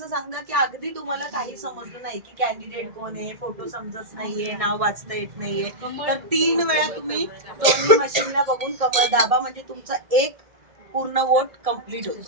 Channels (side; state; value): left; late; 1.8 ms